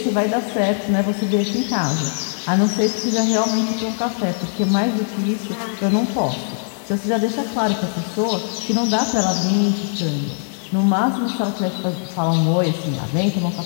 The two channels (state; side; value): silent; right; 59 dB below the other